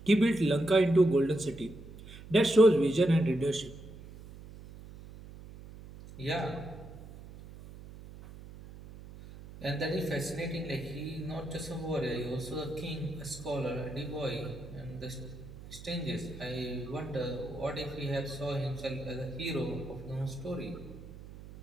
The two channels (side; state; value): right; noise; hum, 16 dB below the sound